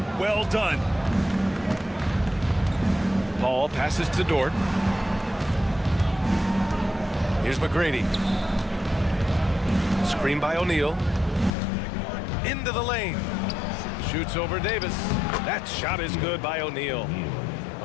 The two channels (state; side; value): drops out; right; at 11.5 s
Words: Well done. Paul passes to Dort. Here's McGrady. Screen by O'Neal. Into the lane. Shoots over Davis. That shot is good by O'Neal.